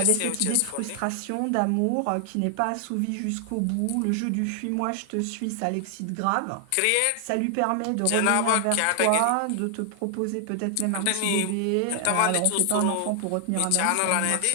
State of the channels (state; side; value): different; both; correlation 0.00